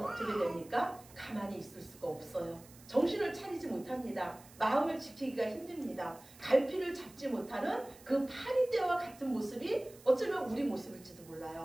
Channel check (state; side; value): noise; right; hiss, 22 dB below the sound